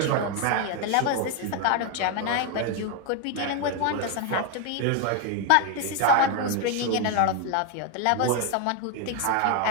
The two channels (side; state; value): both; different; correlation 0.01